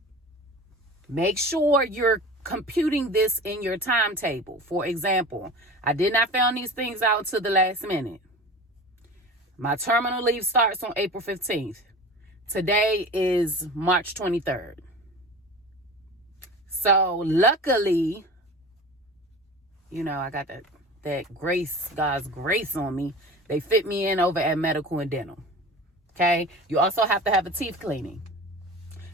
make sure you're computing this in your timetable. For example, I did not find these things out until the last minute. My terminal leave starts on April 15th. Today is March 23rd. So luckily, I got that grace, God's grace on me. They fit me in over at medical and dental. Okay. You also have to have a teeth cleaning.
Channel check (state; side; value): normal; both; correlation 0.36